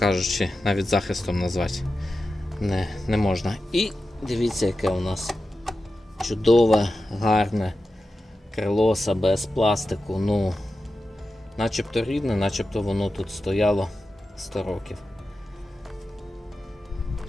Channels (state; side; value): normal; both; correlation 0.92